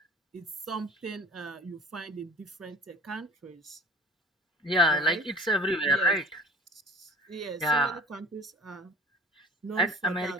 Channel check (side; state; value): both; normal; correlation 0.44